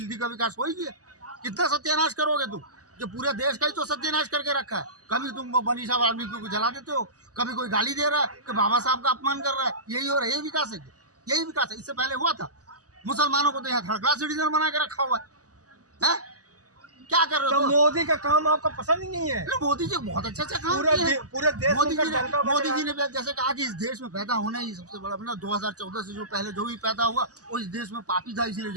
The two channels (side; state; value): left; late; 0.67 ms